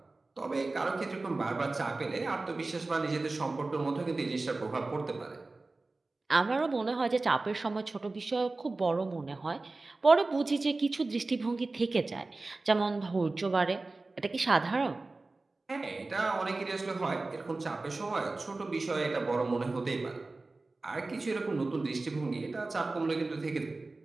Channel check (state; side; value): quieter; left; 3.4 dB